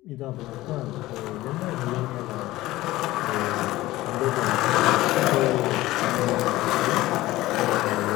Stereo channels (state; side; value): quieter; right; 17.3 dB